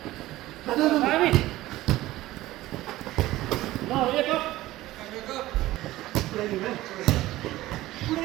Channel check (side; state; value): left; quieter; 16.6 dB